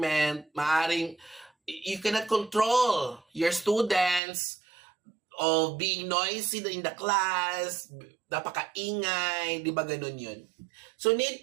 maaaring you cannot control your students of being noisy in the class, napakaingay, di ba ganun yun? So need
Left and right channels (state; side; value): drops out; left; at 4.2 s